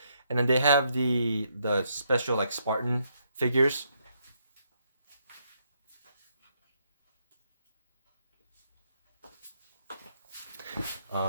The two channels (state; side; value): inverted; both; correlation -0.75